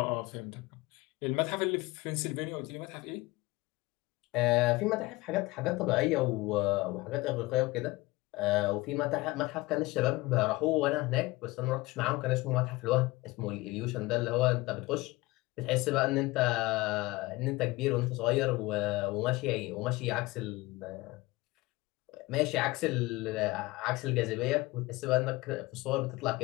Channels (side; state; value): right; quieter; 21.2 dB